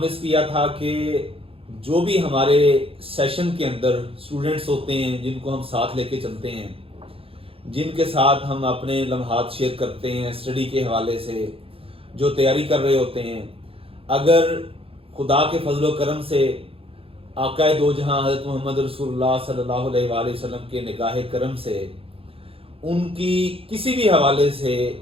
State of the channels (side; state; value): left; late; 0.27 ms